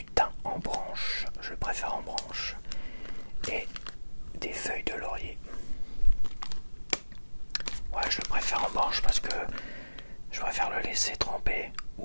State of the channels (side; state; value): both; inverted; correlation -1.00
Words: thym en branche, je le préfère en branche, et des feuilles de laurier. Ouais, je le préfère en branche parce que je préfère le laisser tremper